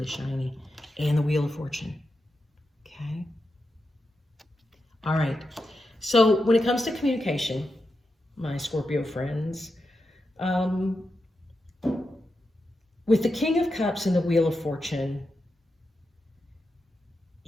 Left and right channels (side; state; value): both; normal; correlation 0.88